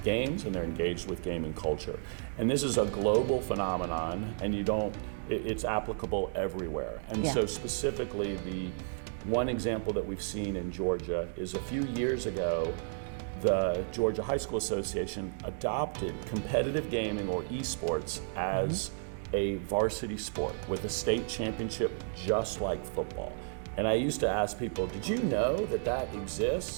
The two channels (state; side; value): silent; left; digital silence